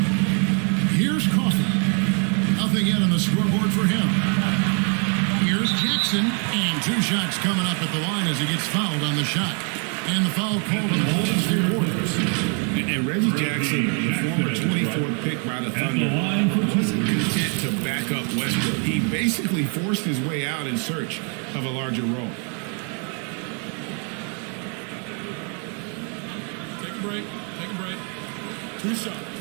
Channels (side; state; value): left; quieter; 38.7 dB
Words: Two shots coming up at the line as he gets fouled on the shot. And the foul called on the Golden State Warriors. And Reggie Jackson, the former 24th pick by the Thunder, wasn't content to back up Westbrook. He basically forced his way out in search of a larger role. Take a break. Take a break. Two shots.